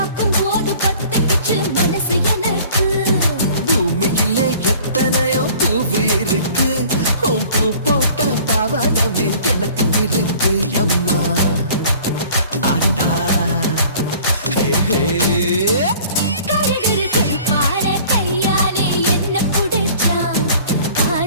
போது பத்திக்கிச்சு மனசு எனக்கு பூமியிலே எத்தனையோ பூவு இருக்கு உன் பூ போட்ட பாவாடமே எனக்கு இருக்கு அம்மா ஆட்டா ஹே ஹே கருகரு கருப்பான கையாலே என்ன புடிச்சா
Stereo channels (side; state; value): both; inverted; correlation -0.49